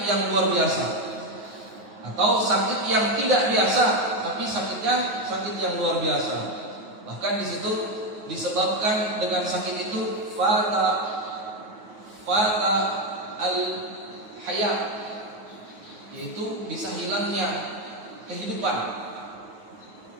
yang luar biasa, atau sakit yang tidak biasa, tapi sakitnya sakit yang luar biasa. Bahkan di situ disebabkan dengan sakit itu fata al-hayat, yaitu bisa hilangnya kehidupan.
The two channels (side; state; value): left; late; 9.4 ms